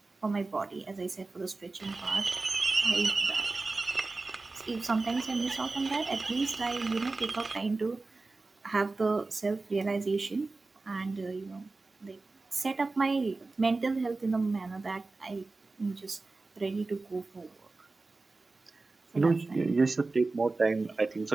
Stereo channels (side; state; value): left; quieter; 3.6 dB